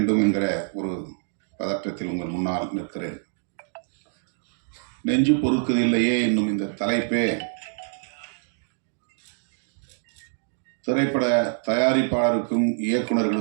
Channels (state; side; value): silent; left; digital silence